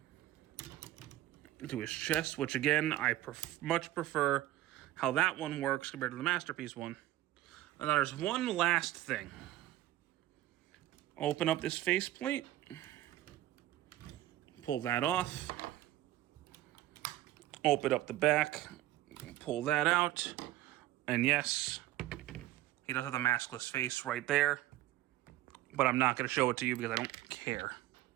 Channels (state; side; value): quieter; left; 15.0 dB